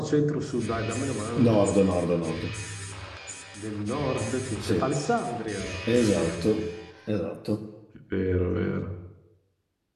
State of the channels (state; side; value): identical; both; correlation 1.00